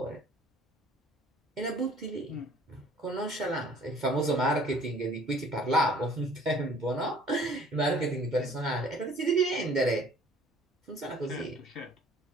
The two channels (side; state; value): both; normal; correlation 0.54